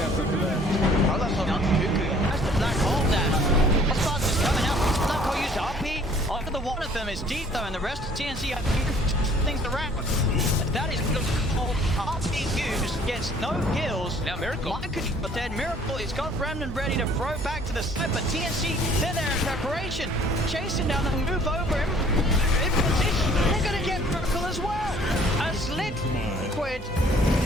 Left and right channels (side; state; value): both; normal; correlation 0.56